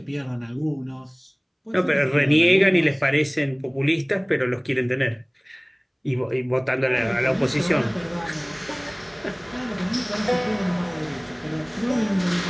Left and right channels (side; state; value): both; identical; correlation 1.00